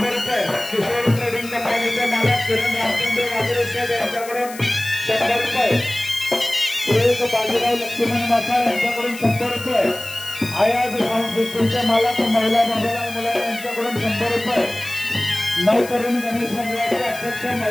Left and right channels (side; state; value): left; noise; hiss, 15 dB below the sound